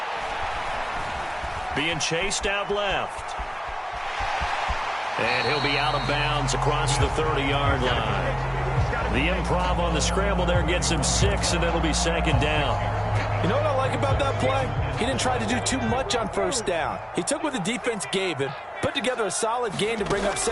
Being chased out left. And he'll be out of bounds across the 30-yard line. The improv on the scramble there gets him 6, and it'll be 2nd down. You know what I like about that play? He didn't try to do too much on 1st down. He took what the defense gave him, put together a solid gain to bring up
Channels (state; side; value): identical; both; correlation 1.00